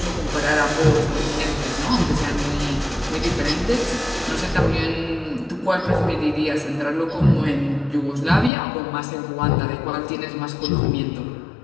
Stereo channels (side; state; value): right; drops out; at 8.5 s